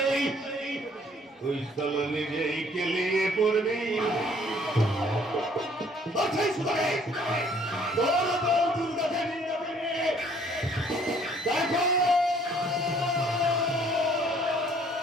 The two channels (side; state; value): both; normal; correlation 0.60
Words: ওই সালা নিজেই কেলিয়ে পড়বি আচ্ছা শুনে তোর বউ দুর্গাকে নিয়ে যাবে দেখো